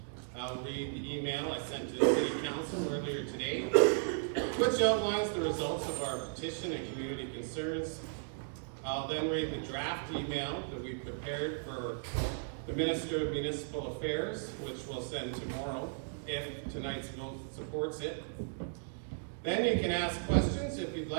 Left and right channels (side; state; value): left; silent; digital silence